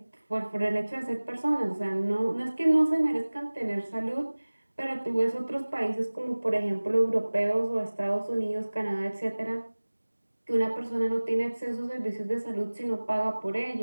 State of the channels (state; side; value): inverted; both; correlation -1.00